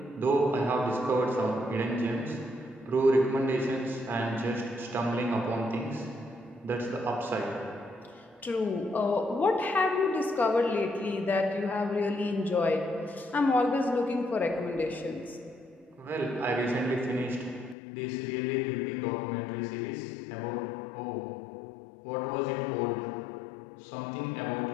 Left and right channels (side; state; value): right; drops out; at 17.8 s